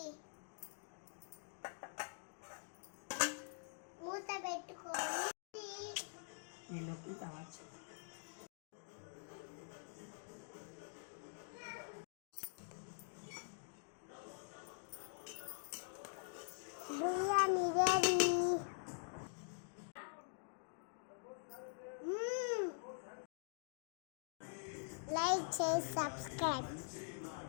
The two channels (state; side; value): silent; right; digital silence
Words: మూత పెట్టుకొని నీళ్ళకి కావచ్చు. బిర్యానీ రెడీ. లైక్ చేసి సబ్స్క్రైబ్.